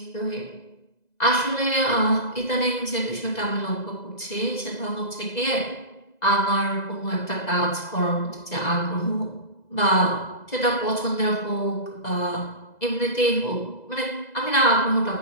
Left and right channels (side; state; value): right; late; 2.0 ms